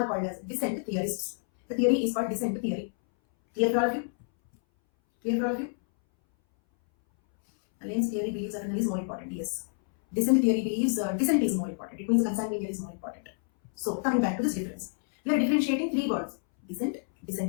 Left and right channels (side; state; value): right; silent; 59 dB below the other